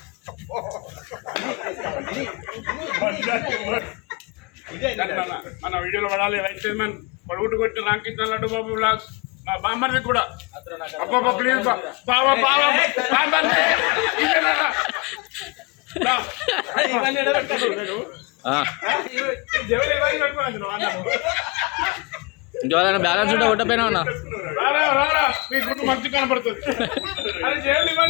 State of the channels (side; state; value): right; quieter; 28.3 dB